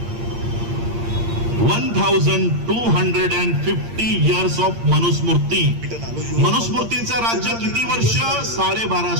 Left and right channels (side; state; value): left; late; 8.7 ms